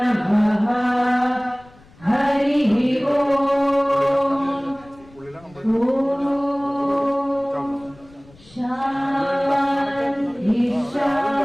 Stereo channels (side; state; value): left; noise; rumble, 26 dB below the sound